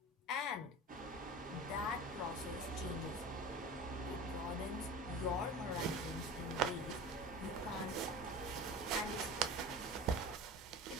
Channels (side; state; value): both; normal; correlation 0.34